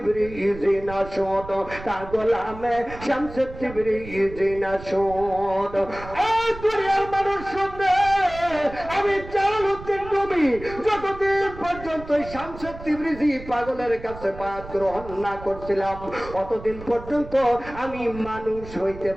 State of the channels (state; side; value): noise; right; rumble, 14 dB below the sound